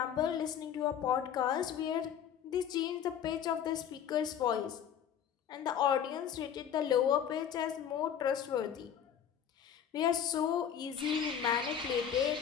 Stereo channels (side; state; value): right; quieter; 8.8 dB